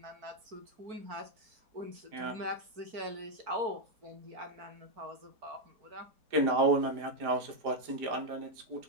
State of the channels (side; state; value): left; late; 4.5 ms